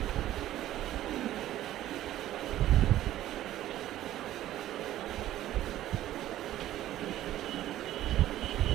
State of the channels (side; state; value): left; quieter; 13.5 dB